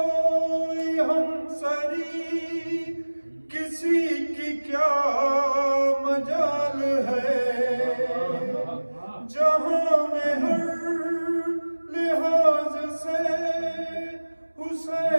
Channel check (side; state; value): both; inverted; correlation -1.00